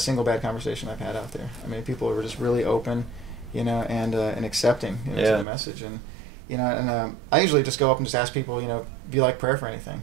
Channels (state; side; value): drops out; left; at 5.5 s